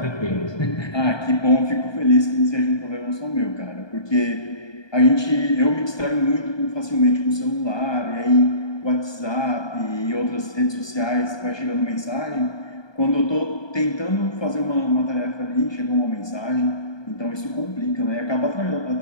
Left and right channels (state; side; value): late; right; 1.2 ms